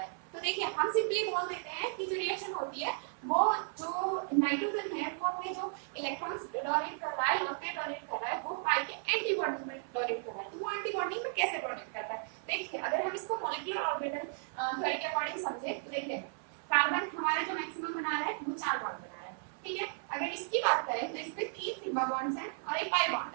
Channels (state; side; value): silent; left; 55 dB below the other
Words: तो देखिए हम सिंपली बोल देते हैं कि जो रिएक्शन होती है वो जो नाइट्रोजन है वो अपने जो इलेक्ट्रॉन्स डोनेट कर रहा है लॉन पे डोनेट कर रहा है वो पाई के एंटी बॉन्डिंग में डोनेट कर रहा है। तो वो एंटी बॉन्डिंग में कैसे डोनेट करता है, देखिए अगर हम इसको मॉलिक्यूलर ऑर्बिटल थ्योरी के अकॉर्डिंग समझे तो देखिए कार्बन हमारा जो मैक्सिमम बना रहा है वो 4 बॉन्ड बना रहा है, ठीक है। अगर इसकी बात करें तो इसमें 3 सिग्मा बॉन्ड्स हैं और एक पाई बॉन्ड